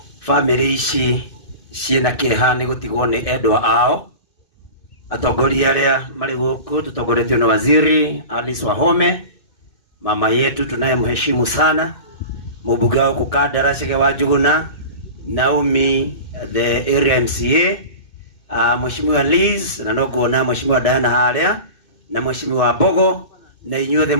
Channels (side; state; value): right; late; 2.5 ms